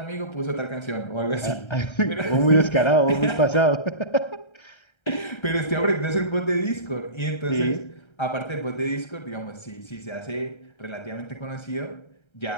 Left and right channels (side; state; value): right; late; 1.3 ms